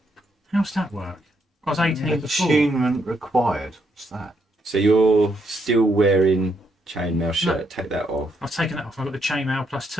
How's that work? I was 18 before. Attunement required. What's that? So you're still wearing chainmail shirt. Take that off. I've taken that off. I've got the chainmail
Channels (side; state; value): both; normal; correlation 0.76